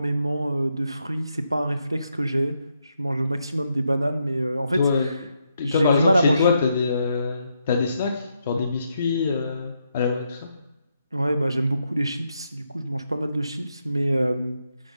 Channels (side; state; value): both; inverted; correlation -0.80